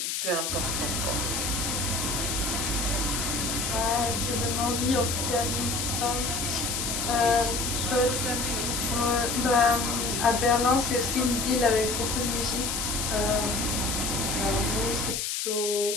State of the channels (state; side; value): noise; left; hiss, 1 dB below the sound